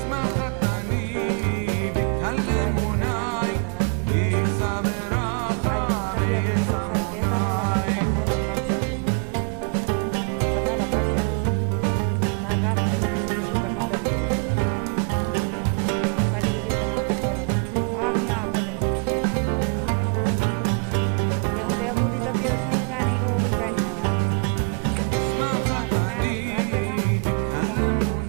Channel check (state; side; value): quieter; left; 39.6 dB